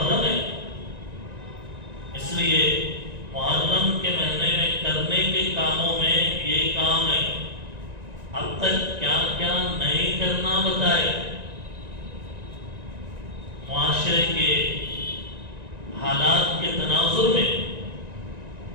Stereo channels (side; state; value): left; late; 1.9 ms